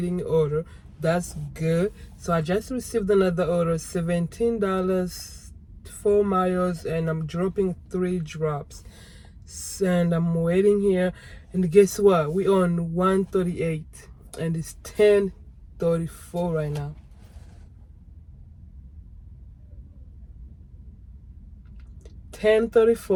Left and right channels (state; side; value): identical; both; correlation 1.00